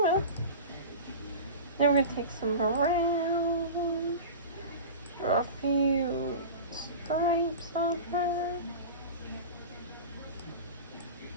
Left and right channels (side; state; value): both; inverted; correlation -0.31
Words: Then we're going to take some brown, draw a few stripes on her.